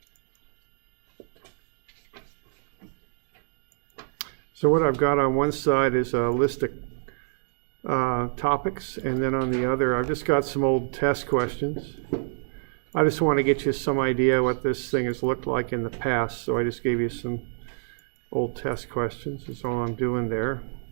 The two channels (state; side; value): silent; left; digital silence